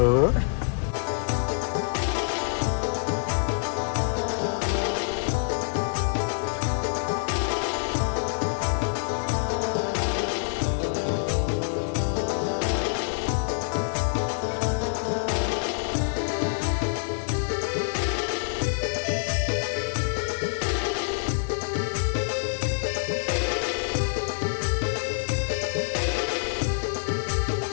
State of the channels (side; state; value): right; silent; digital silence